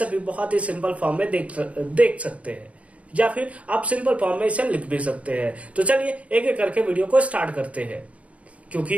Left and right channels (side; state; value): left; late; 0.065 ms